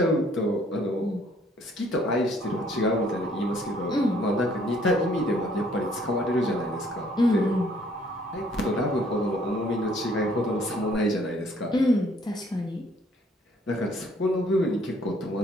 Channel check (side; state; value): both; normal; correlation 0.62